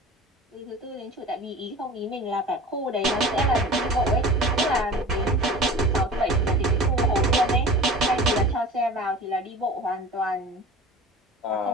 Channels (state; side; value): normal; both; correlation 0.38